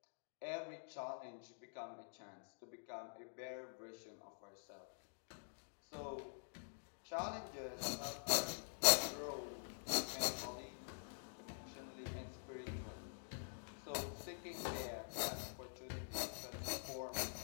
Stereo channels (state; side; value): silent; right; digital silence